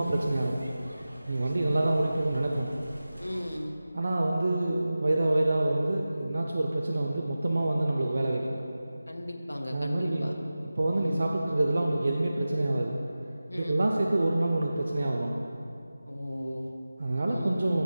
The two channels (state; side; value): inverted; both; correlation -0.96